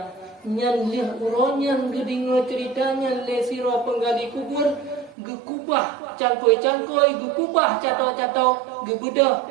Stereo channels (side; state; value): left; drops out; at 5.2 s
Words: Nyan lih uronyan gedingo ceritanya le siro penggali kubur gekubah cangkoi gekubah catau gebedah